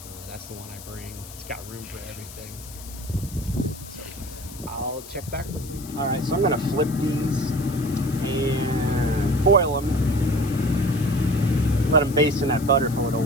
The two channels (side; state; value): left; noise; hiss, 16 dB below the sound